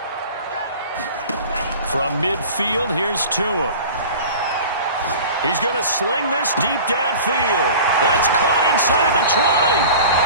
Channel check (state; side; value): inverted; both; correlation -0.39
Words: From midfield, here's Tua. He's going to sling this deep downfield. That's caught inside the 20.